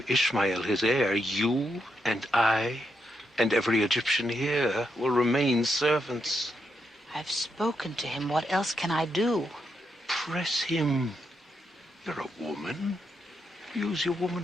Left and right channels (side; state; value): both; normal; correlation 0.82